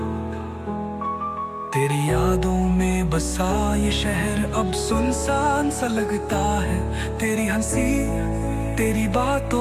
तेरी यादों में बसा ये शहर अब सुनसान सा लगता है। तेरी हंसी, तेरी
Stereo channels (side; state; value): both; identical; correlation 1.00